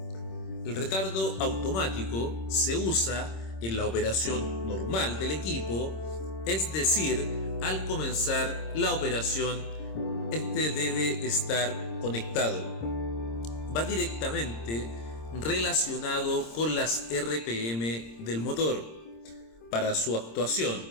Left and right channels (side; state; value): right; late; 26 ms